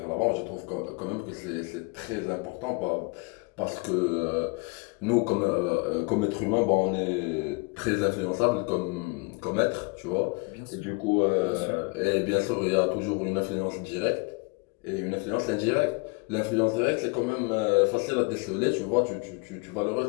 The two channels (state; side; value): quieter; right; 29.2 dB